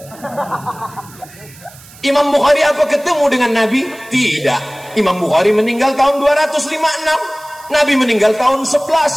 Imam Bukhari apa ketemu dengan Nabi? Tidak. Imam Bukhari meninggal tahun 256. Nabi meninggal tahun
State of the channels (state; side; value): noise; right; hiss, 22 dB below the sound